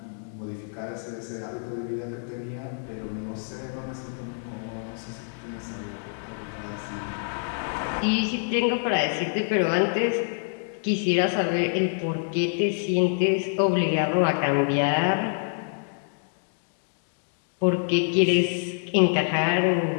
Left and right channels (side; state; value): right; silent; digital silence